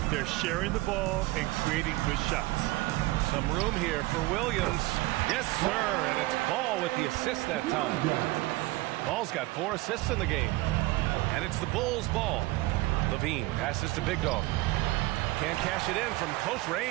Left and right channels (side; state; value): left; quieter; 20.1 dB